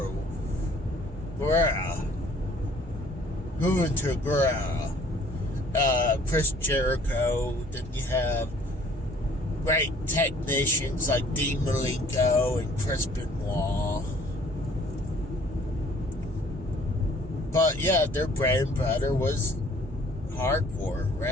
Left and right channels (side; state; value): both; normal; correlation 0.56